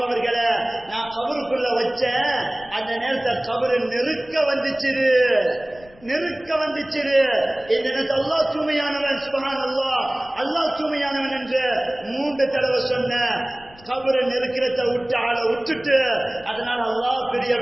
அவர்களை நான் கபருக்குள்ள வச்சேன், அந்த நேரத்தில் கபரு நெருக்க வந்துச்சு. இந்த நேரத்தில் அல்லாஹ் தூய்மையானவன், சுப்ஹானல்லாஹ், அல்லாஹ் தூய்மையானவன் என்று 3 தடவை சொன்ன. கபரை நெருக்கிறத விட்டு ஆளை விட்டுட்டு, அதனால அல்லாஹ்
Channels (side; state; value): left; noise; rumble, 24 dB below the sound